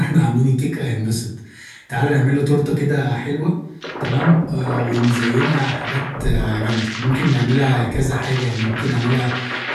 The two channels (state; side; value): identical; both; correlation 1.00